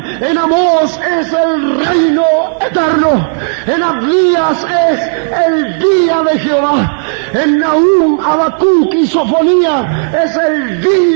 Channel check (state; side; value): silent; left; 69 dB below the other